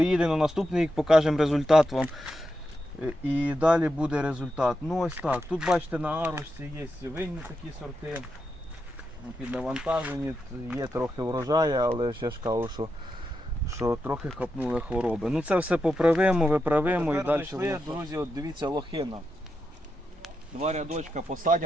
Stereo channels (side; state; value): both; normal; correlation 0.86